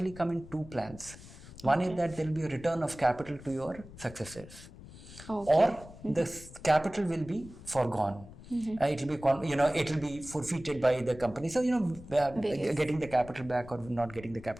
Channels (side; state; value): left; noise; rumble, 17 dB below the sound